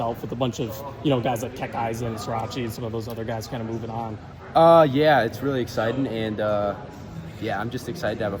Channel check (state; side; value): identical; both; correlation 1.00